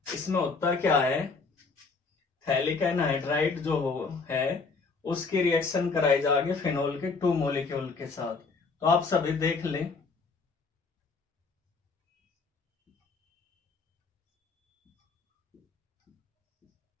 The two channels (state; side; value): quieter; right; 4.4 dB